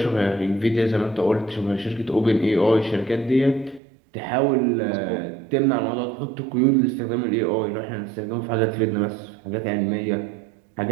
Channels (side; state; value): left; drops out; at 3.8 s